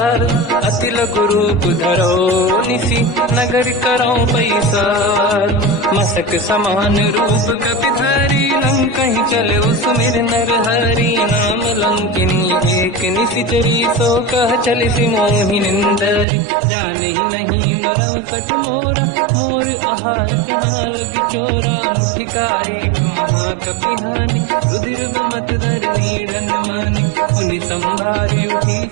अति लघु रूप धरो निसी, नगर करौ पैसार। मसक समान रूप कपि धरी, लंकहि चले सुमिर नर हरि। नाम लंकिनी एक निशिचरी, सो कह चलिसि मोहि निंदरी। जानहि नहीं मरम सठ मोरा, मोर आहार जालक चोरा। मुठिका एक महाकपि हानि, रुधिर बमत धर नीड़न मानि। पुनि संभारी उठी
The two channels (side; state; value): left; drops out; at 16.2 s